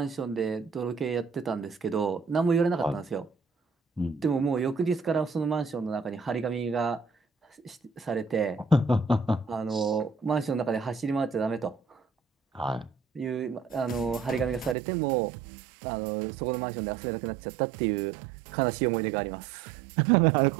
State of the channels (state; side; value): drops out; left; at 14.8 s